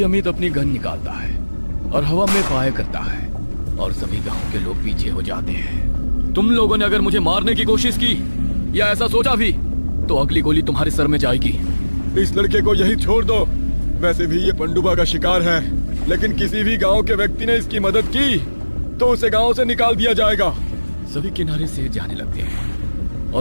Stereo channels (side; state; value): both; inverted; correlation -1.00